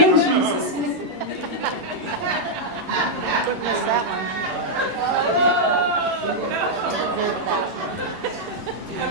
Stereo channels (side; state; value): left; late; 11 ms